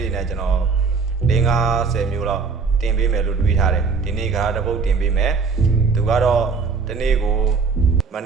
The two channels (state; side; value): quieter; left; 4.9 dB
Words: တွေနဲ့ကျွန်တော်50မျိုးလောက်တင်ပေးမယ်လို့တွေးထားတယ်ဒီနေ့ဂါရာတစ်ပုတ်တင်ပေးမယ်သူကတော့တနေ့ကိုမ